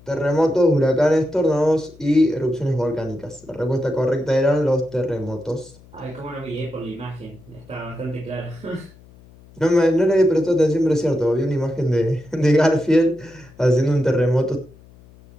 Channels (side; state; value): left; noise; hum, 25 dB below the sound